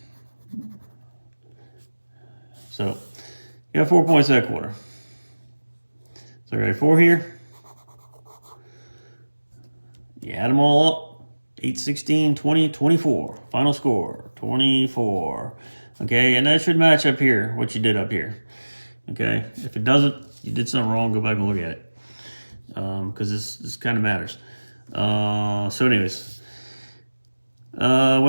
So you got 4 points that quarter. So you got 4 here. You add them all up. 8, 16, 20, 24. Final score, 24. Okay, and that should match up here, what you did up here. Okay, if it doesn't, you did something wrong, go back and look at it. Because this kind of matters. So anyways, we're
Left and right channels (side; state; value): both; inverted; correlation -1.00